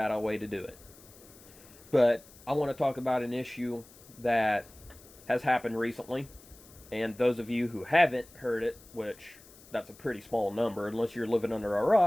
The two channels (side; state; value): left; noise; hiss, 23 dB below the sound